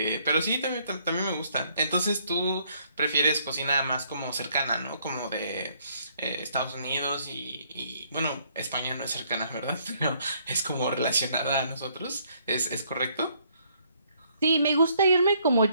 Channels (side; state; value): both; inverted; correlation -0.67